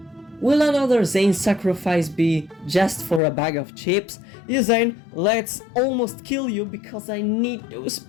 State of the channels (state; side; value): drops out; right; at 3.2 s